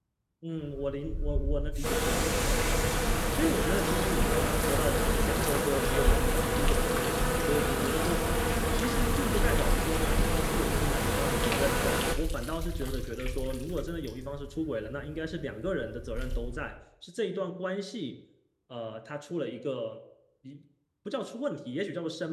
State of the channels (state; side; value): identical; both; correlation 1.00